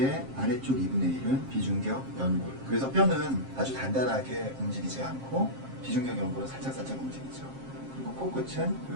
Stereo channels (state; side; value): late; left; 7.5 ms